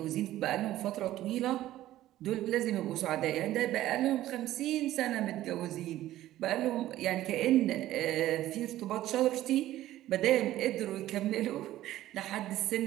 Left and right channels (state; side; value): quieter; left; 14.3 dB